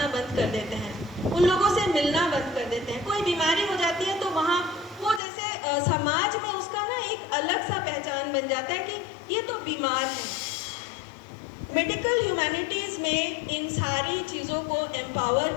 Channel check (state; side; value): drops out; right; at 5.2 s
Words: बंद कर देते हैं, उन लोगों से मिलना बंद कर देते हैं। कोई बीमारी हो जाती है तो वहाँ वो जैसे समाज में उसका ना एक अलग सा पहचान बन जाता है कि ये तो बीमार है। मेडिकल ह्यूमैनिटीज़ में इन सारी चीज़ों को एम्पावर